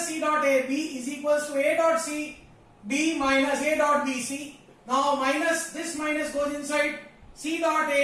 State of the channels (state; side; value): identical; both; correlation 1.00